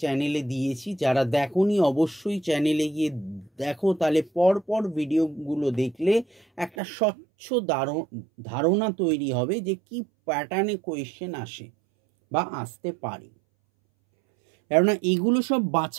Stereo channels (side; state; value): left; drops out; at 6.7 s